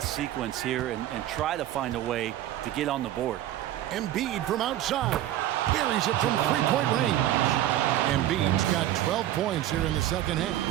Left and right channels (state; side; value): quieter; left; 13.1 dB